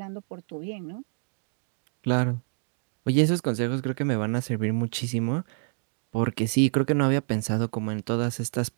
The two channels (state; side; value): silent; left; digital silence